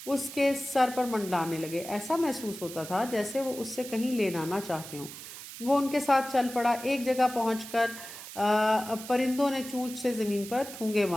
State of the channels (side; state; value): right; noise; hiss, 12 dB below the sound